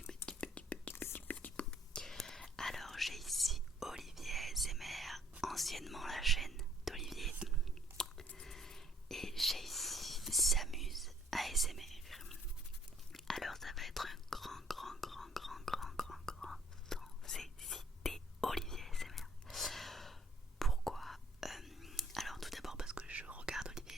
Alors j'ai ici Olivier ASMR, anciennement la chaîne d'Olivier. Et j'ai ici S'amuse ASMR. Alors ça va être un grand c'est cité Olivier ASMR. Pourquoi alors tout d'abord parce que je regarde Olivier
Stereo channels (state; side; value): normal; both; correlation 0.62